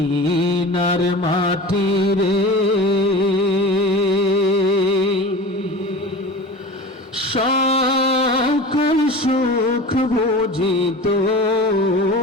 মাটিরে সকল সুখ বুঝি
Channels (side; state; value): both; normal; correlation 0.34